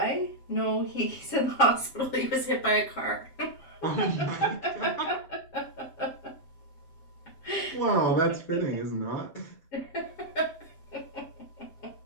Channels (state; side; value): late; right; 7.4 ms